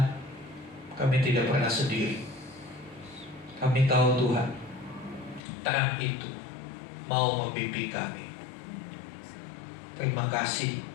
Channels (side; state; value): right; drops out; at 5.4 s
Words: kami tidak pernah sendiri. Kami tahu Tuhan, terang itu mau membimbing kami. Terima kasih